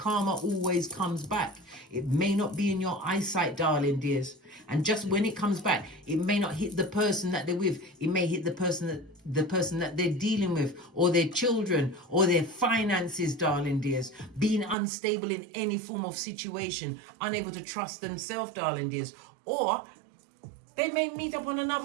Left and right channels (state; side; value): drops out; left; at 14.8 s